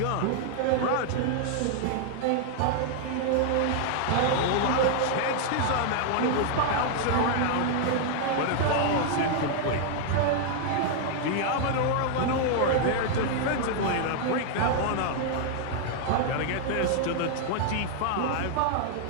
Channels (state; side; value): different; both; correlation 0.00